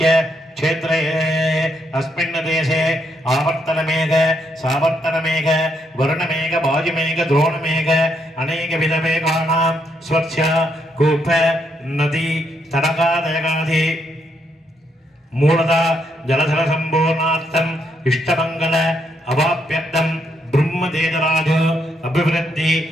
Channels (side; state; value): both; normal; correlation 0.76